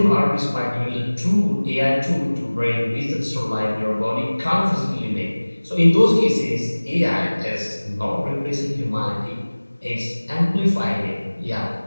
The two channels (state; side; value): inverted; both; correlation -1.00